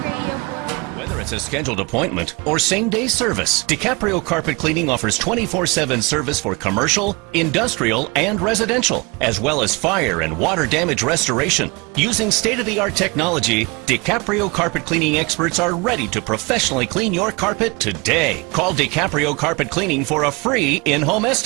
Radio 45. Whether it's a scheduled appointment or same-day service, DiCaprio Carpet Cleaning offers 24/7 service for commercial, industrial, and residential, as well as fire and water damage restoration. Using state-of-the-art technology, DiCaprio Carpet Cleaning experts are ready to professionally clean your carpet today. Call DiCaprio Carpet Cleaning for a free in-home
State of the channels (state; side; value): quieter; left; 27.4 dB